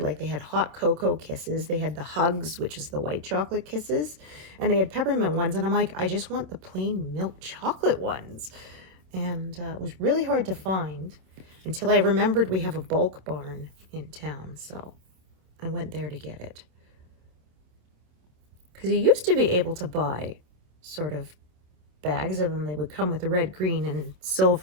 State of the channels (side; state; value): left; late; 27 ms